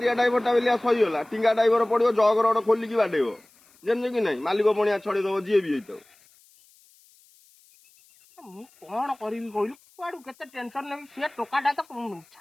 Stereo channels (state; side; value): noise; left; hiss, 30 dB below the sound